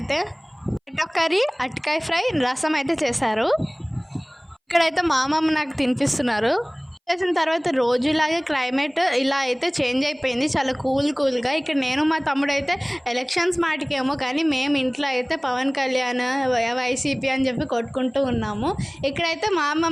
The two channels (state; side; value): identical; both; correlation 1.00